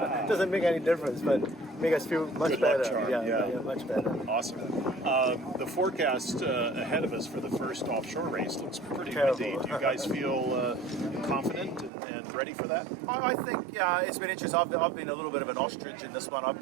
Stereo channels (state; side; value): drops out; left; at 11.9 s